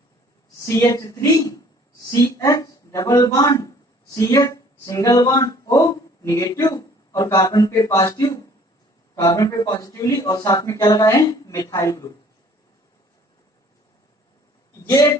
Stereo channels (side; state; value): both; normal; correlation 0.55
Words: CH3 CH double bond CH single bond O negative, और कार्बन पे पॉजिटिवली, और साथ में क्या लगा है मिथाइल ग्रुप। ये